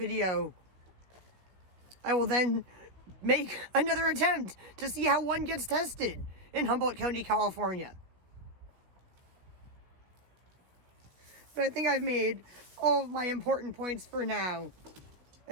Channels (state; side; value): late; left; 16 ms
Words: I will then make another attempt to see how one gets tested in Humboldt County, California. But I think I've made all of my important points for now.